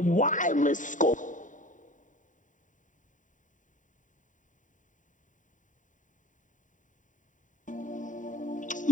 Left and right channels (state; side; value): late; right; 0.37 ms